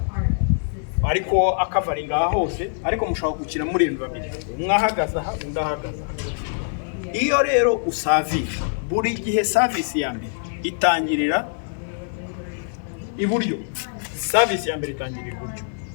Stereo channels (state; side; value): silent; right; digital silence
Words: ariko akavaringa aha hose, ariko mushobora gukina muri babiri, umwe ahagaze aha undi ahagaze aha. Iyo rero usavinga, buri gihe service ya mbere itangirira iburyo. Service ya mbere itangirira iburyo.